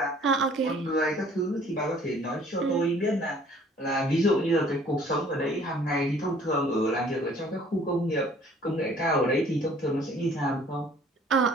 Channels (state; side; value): normal; both; correlation 0.55